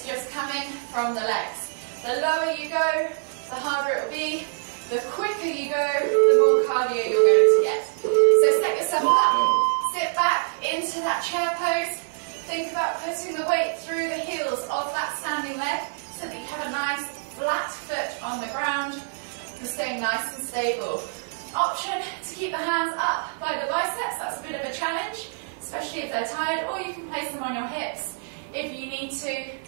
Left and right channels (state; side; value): silent; left; digital silence